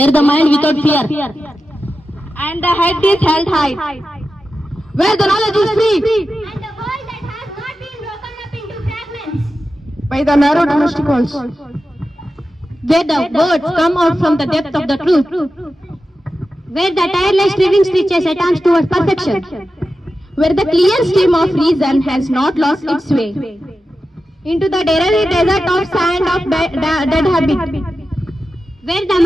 the mind without fear and the head is held high, where the knowledge is free and a world that has not been broken up into fragments. By the narrow domestic walls. where the words come out from the depth of the truth, where the tireless striving stretches attempts towards perfection, where the clear stream of reason has not lost its way. into the dreary desert of sand of dead habit, where the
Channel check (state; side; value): normal; both; correlation 0.92